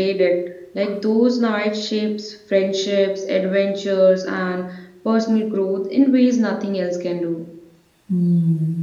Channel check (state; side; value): identical; both; correlation 1.00